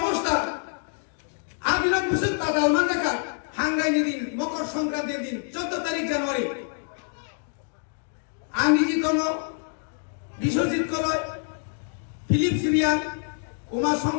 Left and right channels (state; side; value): silent; right; 61 dB below the other